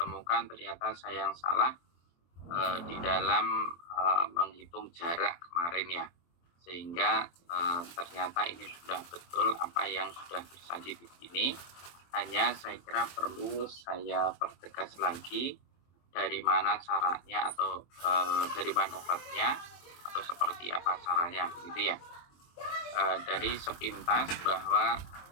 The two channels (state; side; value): late; right; 23 ms